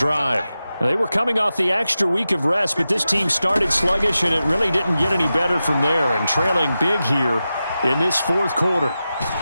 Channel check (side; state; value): both; inverted; correlation -0.92